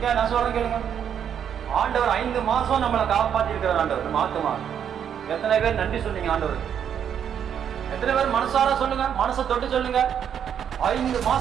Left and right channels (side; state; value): left; quieter; 8.6 dB